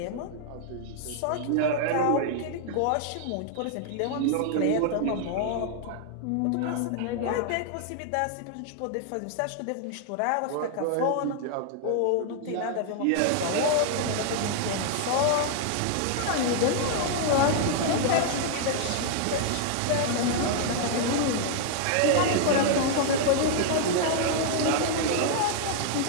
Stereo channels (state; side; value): different; both; correlation 0.00